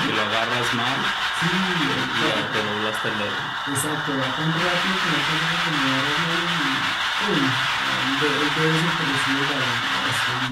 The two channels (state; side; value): identical; both; correlation 1.00